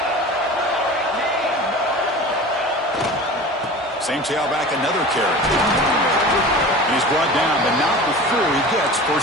Same tailback, another carry. And he's brought down, but not before he gets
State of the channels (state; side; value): normal; both; correlation 0.36